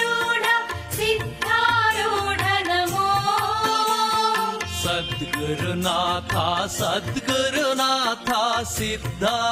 सिद्धारूढ नमो सद्गुरुनाथ सद्गुरुनाथ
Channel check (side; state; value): both; identical; correlation 1.00